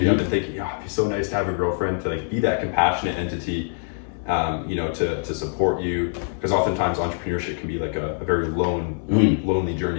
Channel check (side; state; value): right; silent; 63 dB below the other